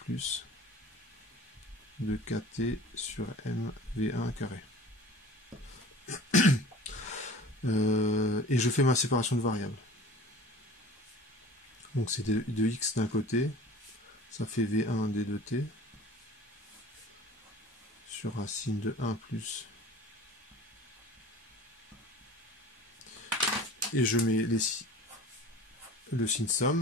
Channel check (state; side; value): normal; both; correlation 0.42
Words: de kt sur m v1 carré. Et je fais ma séparation de variables. Donc c'est de x d'un côté, ça fait v1 d de t sur racine de 1 plus. Et je mets le signe